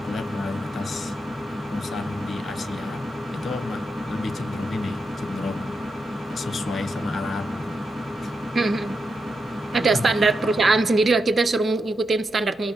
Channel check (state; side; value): normal; both; correlation 0.85